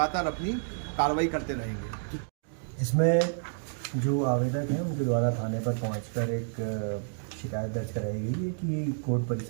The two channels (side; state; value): left; silent; digital silence